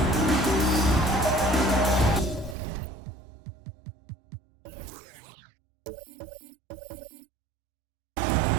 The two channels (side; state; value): left; drops out; at 2.6 s